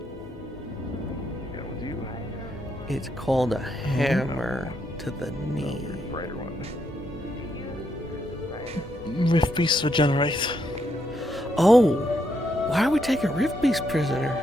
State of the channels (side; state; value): both; normal; correlation 0.78